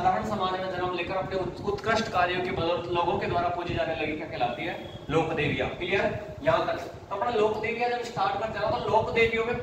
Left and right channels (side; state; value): both; identical; correlation 1.00